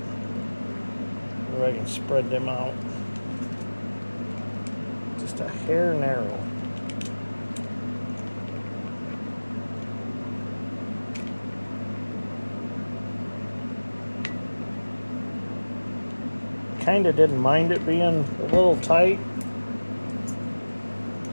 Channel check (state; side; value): inverted; both; correlation -1.00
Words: So I can spread them out. Just a hair narrow. Kinda didn't mind it being a little tight.